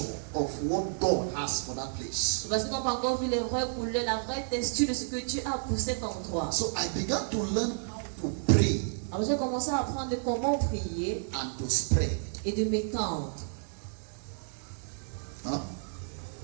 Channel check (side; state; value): left; silent; digital silence